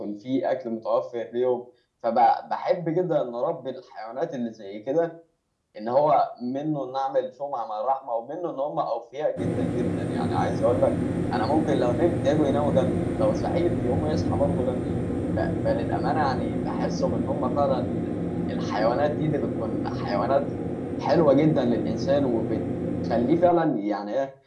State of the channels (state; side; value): identical; both; correlation 1.00